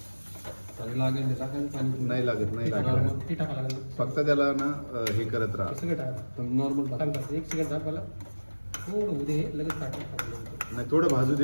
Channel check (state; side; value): inverted; both; correlation -1.00